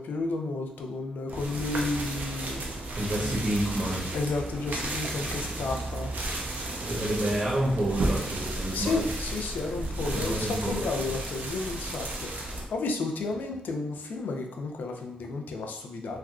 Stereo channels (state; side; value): normal; both; correlation 0.75